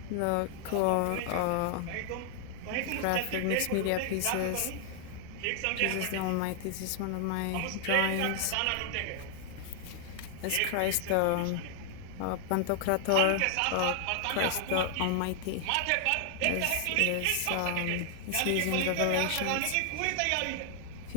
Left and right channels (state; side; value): different; both; correlation 0.00